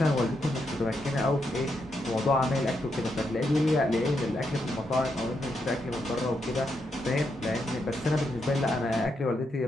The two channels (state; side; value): normal; both; correlation 0.81